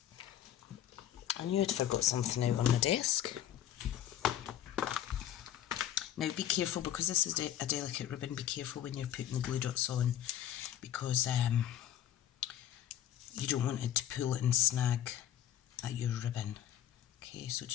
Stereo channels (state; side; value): quieter; right; 11.1 dB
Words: I knew I'd forgot something out on the desk. Now be careful, because this is a delicate ribbon, be careful when you're putting the glue dots on, because you don't want it to pull it and snag at your ribbon. Okay, so